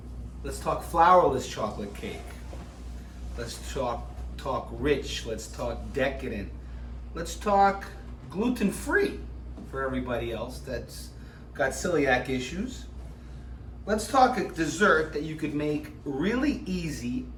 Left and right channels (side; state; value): both; identical; correlation 1.00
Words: Let's talk flourless chocolate cake. Let's talk rich. Let's talk decadent. Let's talk gluten-free for everybody else that's got celiac issues. Let's talk a dessert that you could make really easy